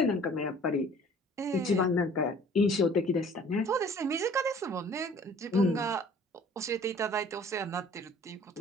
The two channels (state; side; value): normal; both; correlation 0.51